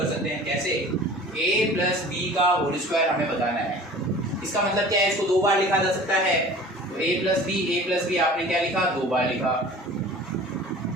सकते हैं। कैसे? a प्लस बी का होल स्क्वायर हमें बताना है। इसका मतलब क्या है? इसको दो बार लिखा जा सकता है। तो a प्लस बी आपने क्या लिखा? दो बार लिखा।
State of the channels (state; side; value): normal; both; correlation 0.43